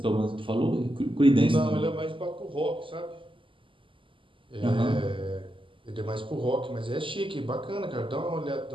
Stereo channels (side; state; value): left; late; 0.25 ms